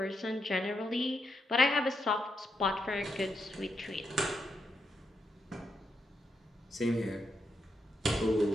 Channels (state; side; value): normal; both; correlation 0.82